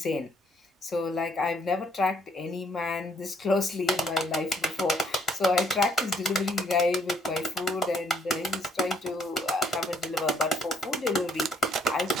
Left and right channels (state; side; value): normal; both; correlation 0.66